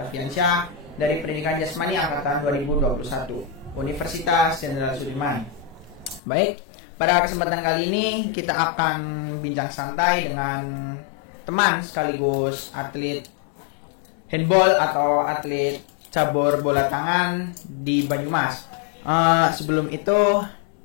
dari Pendidikan Jasmani Angkatan 2021 Universitas Jenderal Sudirman. Baik, pada kesempatan kali ini kita akan bincang santai dengan teman sekaligus atlet handball atau atlet cabur bola tangan di Banyumas. Sebelum itu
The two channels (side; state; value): right; drops out; at 6.2 s